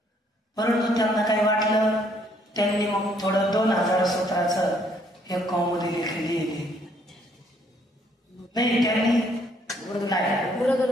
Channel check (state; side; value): normal; both; correlation 0.66